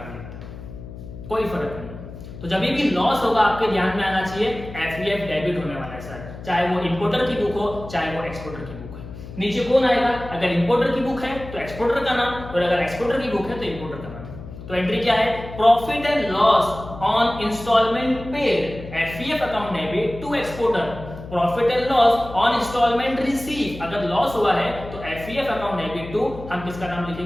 लिखता है, कोई फर्क नहीं। तो जब भी लॉस होगा आपके ध्यान में आना चाहिए FEF डेबिट होने वाला है सर, चाहे वो इंपोर्टर की बुक हो चाहे वो एक्सपोर्टर की बुक है। नीचे कौन आएगा? अगर इंपोर्टर की बुक है तो एक्सपोर्टर का नाम, और अगर एक्सपोर्टर की बुक है तो इंपोर्टर का नाम। तो एंट्री क्या है? Profit and loss on instalment paid, FEF account debit to exporter. Profit and loss on instalment receive, अगर लॉस हुआ है तो FEF अकाउंट डेबिट टू, हम किसका नाम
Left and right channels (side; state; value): left; noise; hum, 13 dB below the sound